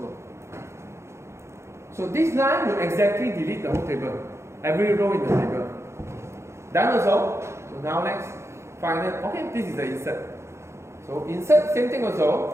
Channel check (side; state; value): left; late; 0.13 ms